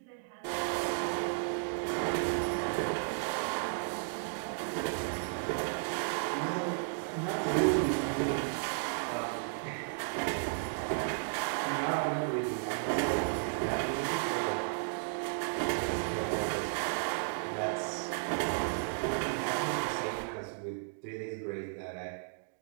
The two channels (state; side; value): silent; left; digital silence